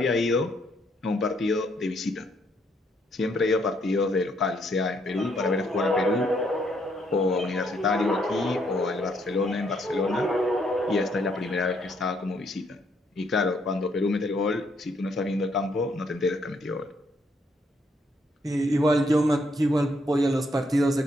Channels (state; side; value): normal; both; correlation 0.72